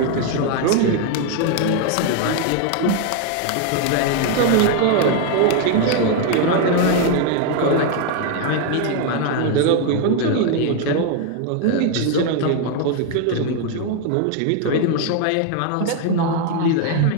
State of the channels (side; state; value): both; different; correlation 0.01